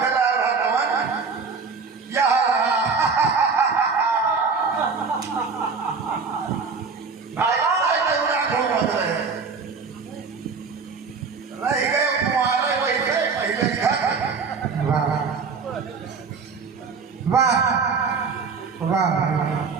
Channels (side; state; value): left; quieter; 5.0 dB